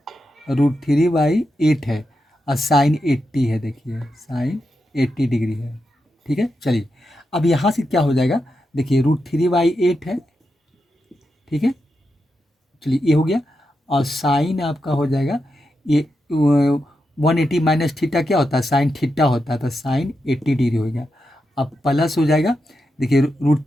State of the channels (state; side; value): normal; both; correlation 0.87